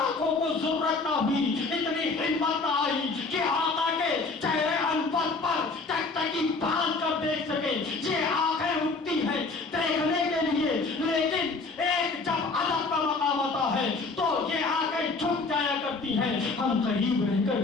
کو ضرورت نہ ہوئی، اتنی ہمت نہ آئی کہ آقا کے چہرے انور پر تک تکی باندھ کر دیکھ سکے. یہ آنکھیں اٹھتی ہیں دیکھنے کے لیے، لیکن ایک جب ادب کا مقام آتا ہے تو یہ آنکھیں جھک جایا کرتی ہیں. ہم قریب رہ کر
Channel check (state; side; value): quieter; right; 3.9 dB